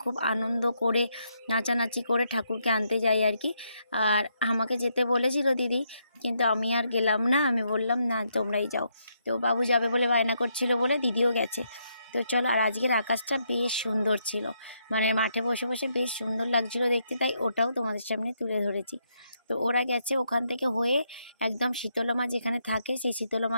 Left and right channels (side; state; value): both; inverted; correlation -0.77